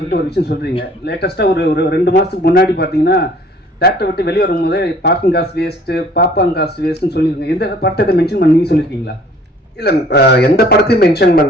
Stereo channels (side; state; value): both; normal; correlation 0.54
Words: சொல்லிட்டு ஒரு விஷயம் சொல்றீங்க. லேட்டஸ்டா ஒரு 2 மாசத்துக்கு முன்னாடி பாத்தீங்கன்னா தேட்டரை விட்டு வெளியே வரும்போது பார்க்கிங் காசு வேஸ்ட், பாப்கார்ன் காசு வேஸ்ட்னு சொல்லிருக்கீங்க. எந்த படத்தை மென்ஷன் பண்ணி சொல்லிருக்கீங்களா? இல்ல எந்த படத்தையும் மென்ஷன்